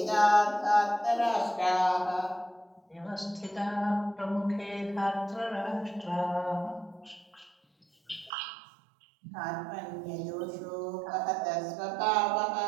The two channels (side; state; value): left; drops out; at 8.3 s